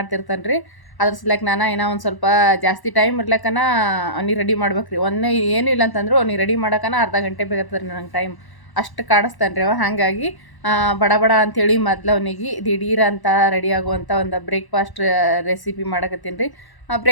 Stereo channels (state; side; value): late; right; 1.1 ms